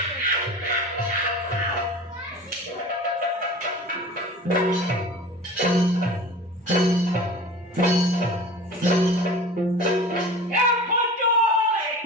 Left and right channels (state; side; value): normal; both; correlation 0.38